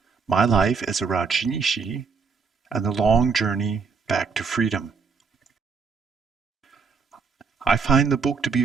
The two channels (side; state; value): left; quieter; 5.3 dB